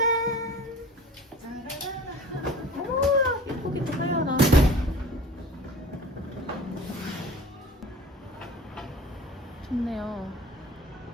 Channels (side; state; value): both; normal; correlation 0.41